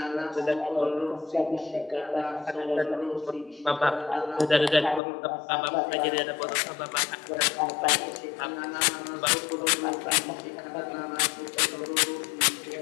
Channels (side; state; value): right; drops out; at 5.0 s